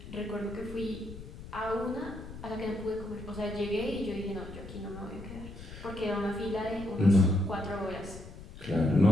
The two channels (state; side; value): noise; left; rumble, 13 dB below the sound